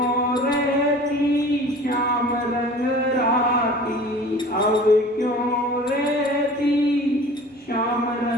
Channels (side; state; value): both; normal; correlation 0.43